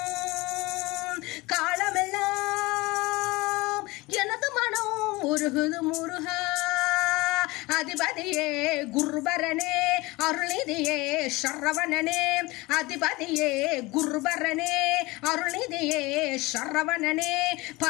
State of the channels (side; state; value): right; quieter; 22.1 dB